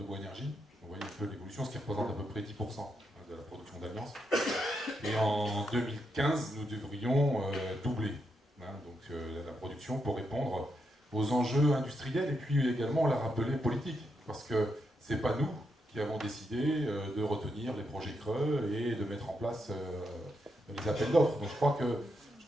bois énergie. Vous voyez un peu l'évolution, ce qui représente à peu près 10% de la production d'Alliance. Et en 2015, nous devrions doubler la production pour répondre aux enjeux industriels et puis également, on l'a rappelé, politiques. Parce que ce n'est pas nous qui avons décidé de retenir les projets creux et de mettre en place les appels d'offres. Donc je crois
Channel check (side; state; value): both; normal; correlation 0.82